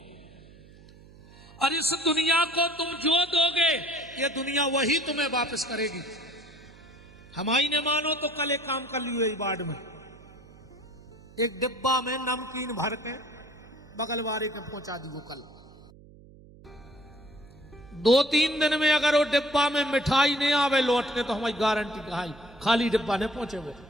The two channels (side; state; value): right; noise; hum, 22 dB below the sound